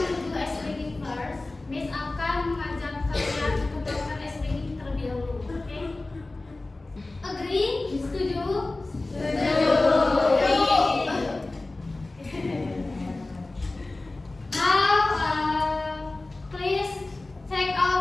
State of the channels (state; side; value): quieter; right; 3.0 dB